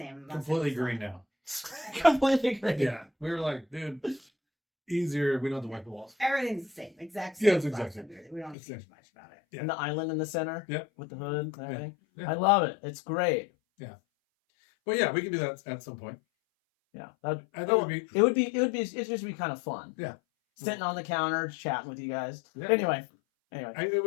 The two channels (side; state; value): right; drops out; at 8.6 s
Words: Completely green now. Completely green. Yeah. We were like, dude, easier. We don't have to wipe the walls. Everything's the same. Exact same. Yeah, it's exactly. We don't change much about it. Yeah. And the island in the center. Yep. With the hood and everything. Yeah. I love it. It's great. Yeah. Well, yeah, we can do that at some point. Yeah, it would just be kind of fun. Yeah, sitting on the counter chatting with you guys. Yeah. Anyway, it